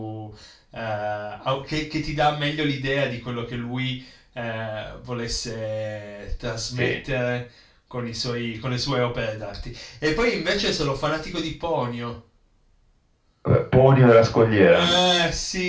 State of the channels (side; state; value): both; identical; correlation 1.00